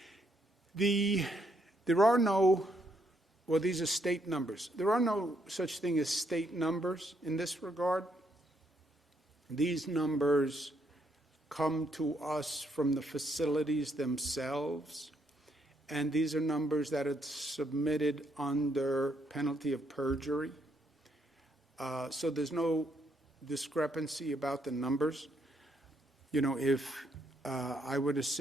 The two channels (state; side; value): normal; both; correlation 0.74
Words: There are no, well, these are state numbers. There are no such thing as state numbers in this regard. These numbers come to us from the facilities themselves, and these are numbers that are submitted under penalty of perjury. So there's no discrepancy about the numbers. You know, if I were to